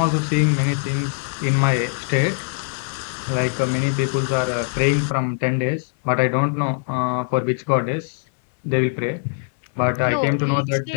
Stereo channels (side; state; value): right; silent; digital silence